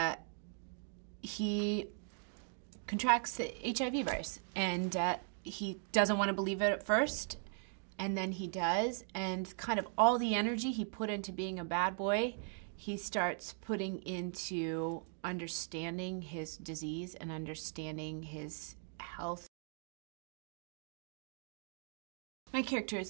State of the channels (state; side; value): silent; left; 52 dB below the other